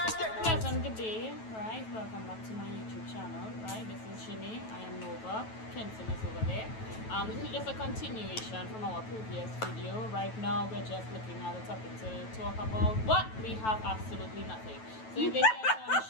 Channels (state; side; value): late; right; 9.2 ms